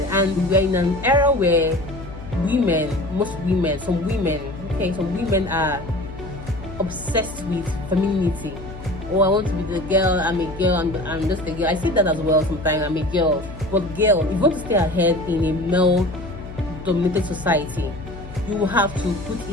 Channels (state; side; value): noise; left; hum, 13 dB below the sound